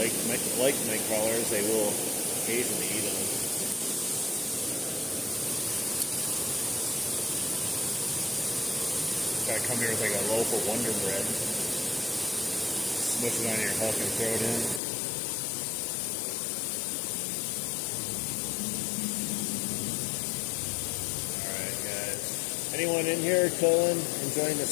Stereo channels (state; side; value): drops out; right; at 14.8 s